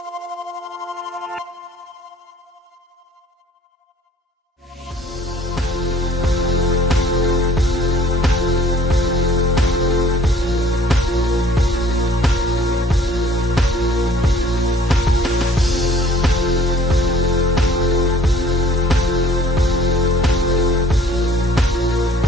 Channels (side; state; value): both; normal; correlation 0.56